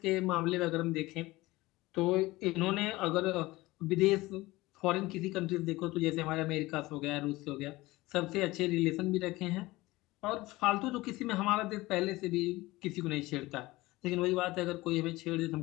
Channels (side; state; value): right; quieter; 19.7 dB